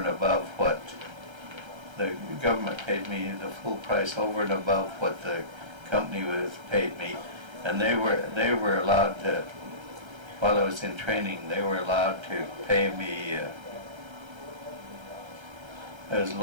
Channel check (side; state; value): left; late; 1.3 ms